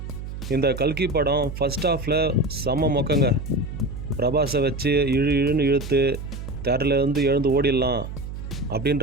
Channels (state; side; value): noise; right; hum, 8 dB below the sound